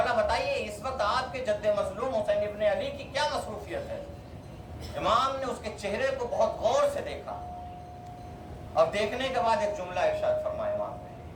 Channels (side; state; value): both; identical; correlation 1.00